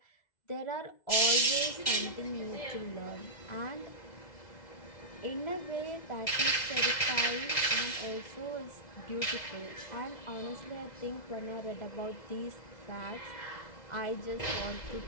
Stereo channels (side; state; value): right; late; 2.0 ms